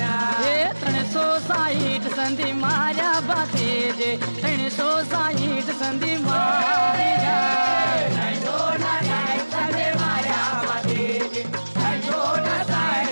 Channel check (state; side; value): inverted; both; correlation -1.00